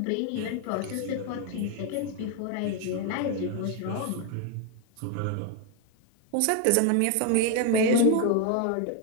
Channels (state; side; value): different; both; correlation 0.01